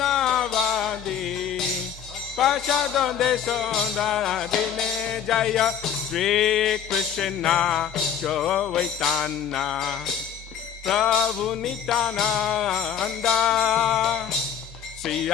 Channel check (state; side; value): quieter; right; 8.5 dB